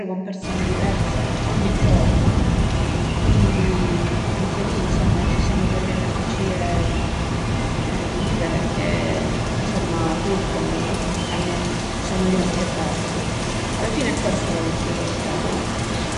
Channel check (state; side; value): identical; both; correlation 1.00